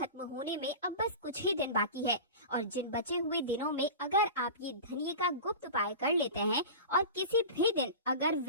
होने में अब बस कुछ ही दिन बाकी है और जिन बचे हुए दिनों में अगर आप ये धनिये का गुप्त उपाय कर लेते हैं और किसी भी दिन अगर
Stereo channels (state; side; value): inverted; both; correlation -0.31